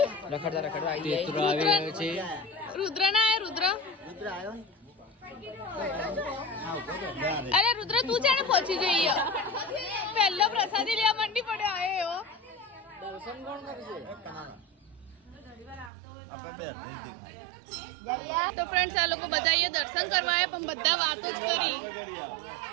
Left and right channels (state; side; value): drops out; left; at 15.9 s